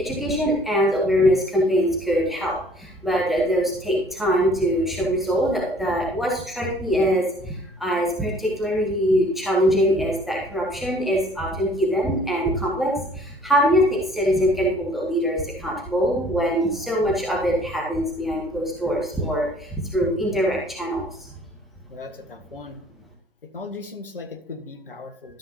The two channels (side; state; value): both; normal; correlation 0.55